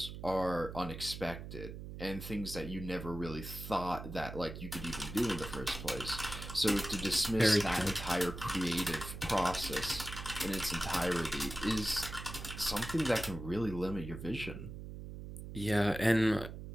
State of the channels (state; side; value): noise; right; hum, 10 dB below the sound